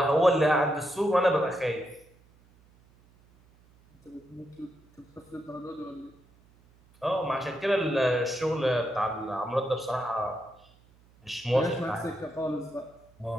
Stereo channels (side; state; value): right; noise; hum, 29 dB below the sound